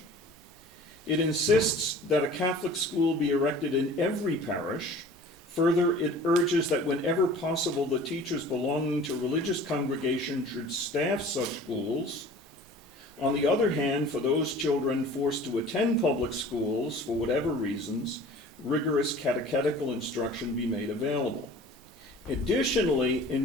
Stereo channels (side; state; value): both; normal; correlation 0.45